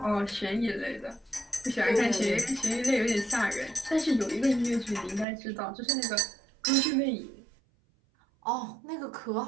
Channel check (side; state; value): left; drops out; at 5.2 s